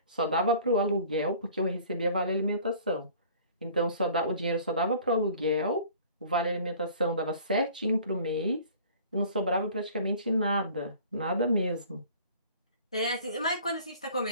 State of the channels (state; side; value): inverted; both; correlation -0.49